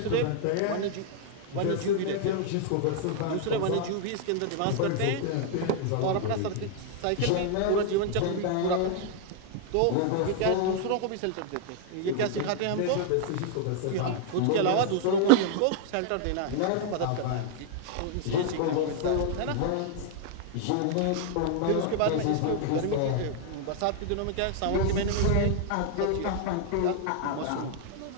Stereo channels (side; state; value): both; different; correlation -0.01